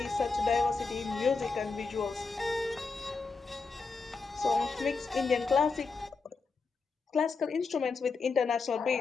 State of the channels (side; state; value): right; quieter; 4.5 dB